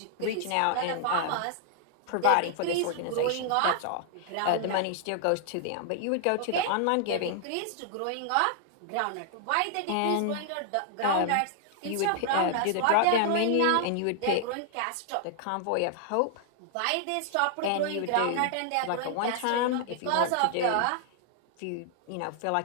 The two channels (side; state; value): both; different; correlation 0.00